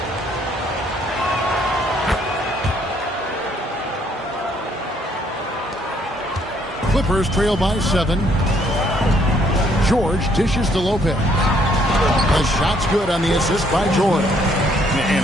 Clippers trail by 7. George dishes to Lopez. The shot's good on the assist by George.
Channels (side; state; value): both; normal; correlation 0.67